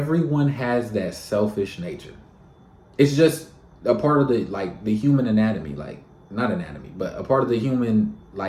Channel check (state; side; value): identical; both; correlation 1.00